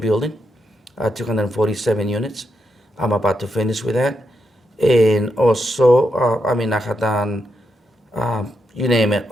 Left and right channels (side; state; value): both; normal; correlation 0.82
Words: 247 units. I'm about to finish with that. And also, I mean, I had done, you name it,